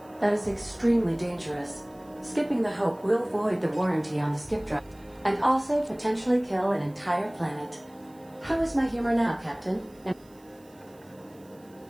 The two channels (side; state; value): right; noise; hiss, 29 dB below the sound